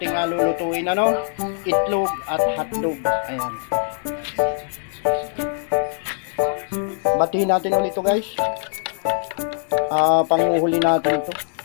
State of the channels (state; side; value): silent; right; 64 dB below the other